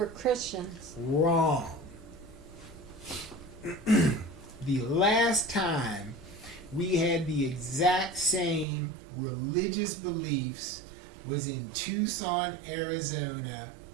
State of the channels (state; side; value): drops out; left; at 8.7 s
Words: Christians. Wrong. The last time we had the exact same religious beliefs was in Tucson, Arizona